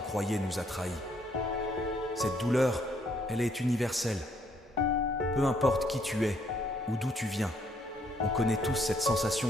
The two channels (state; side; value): normal; both; correlation 0.68